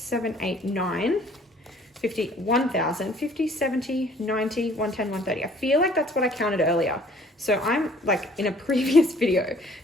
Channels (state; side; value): normal; both; correlation 0.56